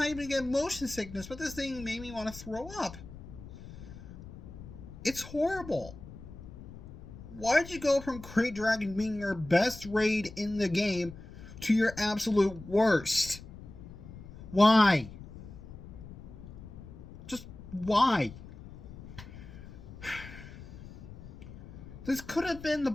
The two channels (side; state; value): left; noise; rumble, 15 dB below the sound